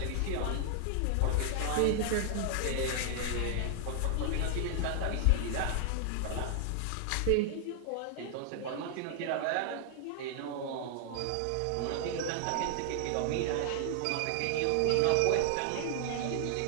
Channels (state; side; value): different; both; correlation 0.00